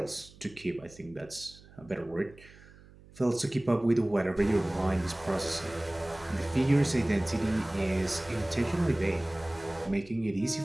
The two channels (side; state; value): right; noise; hum, 23 dB below the sound